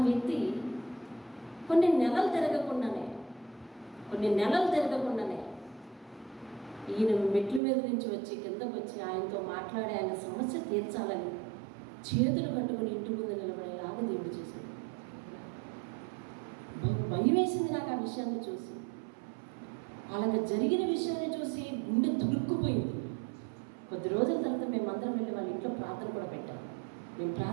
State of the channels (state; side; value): drops out; left; at 7.6 s